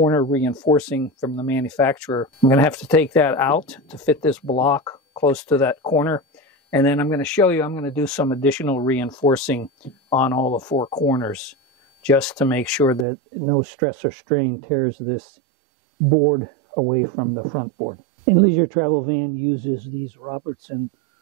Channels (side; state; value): left; drops out; at 13.1 s